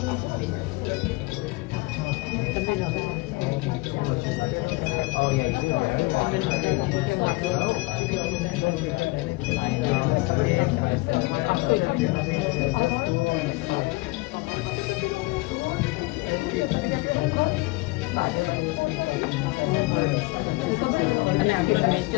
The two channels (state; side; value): quieter; right; 23.8 dB